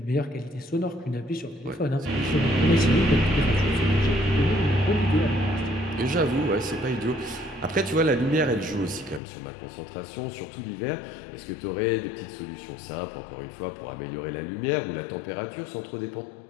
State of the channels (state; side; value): drops out; right; at 9.2 s